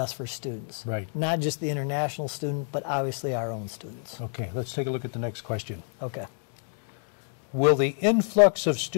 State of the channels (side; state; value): right; silent; 59 dB below the other